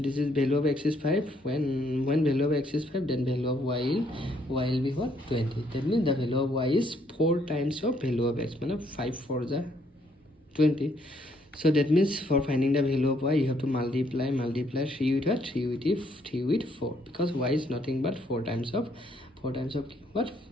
is value of x is 5. When value of x is 5, then value of y will be what? 20. That means the value of y is 4 times of value of x. 5 4 is 20. So that means for finding the value of y, you have to multiply 3 with what? 3 with 4, because y is nothing but 4 times of what?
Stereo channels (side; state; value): both; normal; correlation 0.69